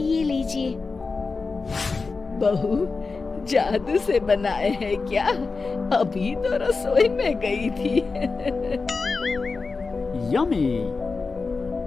ये लीजिए। बहू जादू से बनाए हैं क्या? अभी तो रसोई में गई थी। यम्मी।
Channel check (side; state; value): right; quieter; 4.3 dB